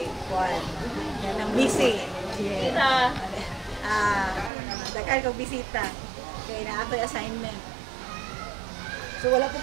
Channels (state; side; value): drops out; left; at 4.5 s